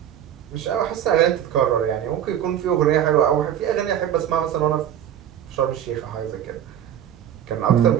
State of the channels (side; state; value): left; quieter; 10.3 dB